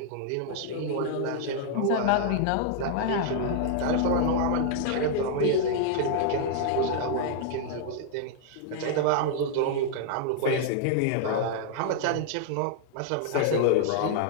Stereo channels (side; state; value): both; different; correlation 0.00